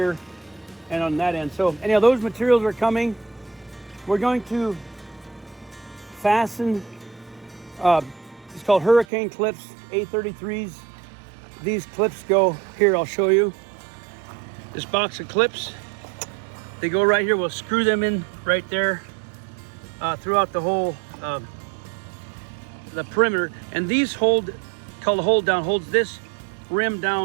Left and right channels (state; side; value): drops out; left; at 9.1 s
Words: and on that end. So anyhow, those materials are coming. We're going to fasten, it's called hurricane clips, A33s. These clips go here, I'll show you. This box of clips, they go right here. We'll screw them in right there throughout the whole, the perimeter. And these called the hold down, holds this rim